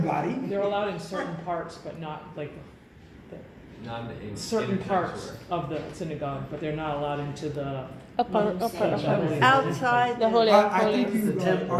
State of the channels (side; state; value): both; identical; correlation 1.00